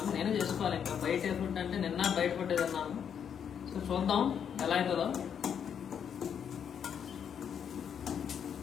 నేనే చేసుకోవాలి. ఇంకా బయట ఫుడ్ అంటే నిన్న బయట ఫుడ్ తిన్నాను. సో చూద్దాం ఎలా అవుతుందో.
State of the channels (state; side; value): quieter; right; 8.0 dB